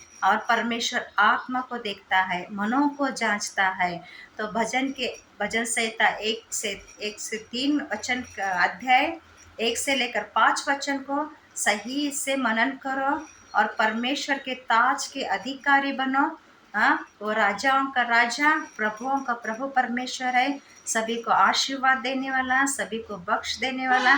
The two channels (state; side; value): identical; both; correlation 1.00